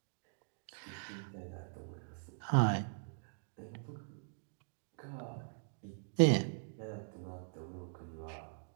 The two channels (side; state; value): left; silent; digital silence